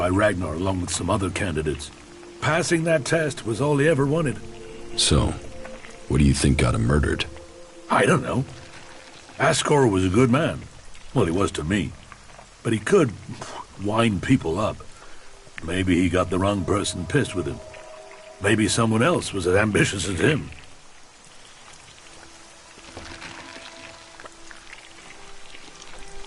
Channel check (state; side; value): identical; both; correlation 1.00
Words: Ragnar along with some other candidates. Passing that test was all he ever wanted. So, what do you think got him murdered? I don't know. Ascor was a good man. Well, he was to me. But he could wind people up. Maybe he got the wrong person pissed with him. Maybe someone else was as ambitious as him.